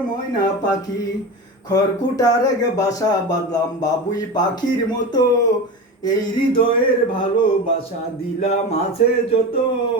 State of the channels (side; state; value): both; normal; correlation 0.26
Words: ময়না পাখি। খড়কুটার এক বাসা বাঁধলাম বাবুই পাখির মতো, এই হৃদয়ের ভালোবাসা দিলাম আছে যত,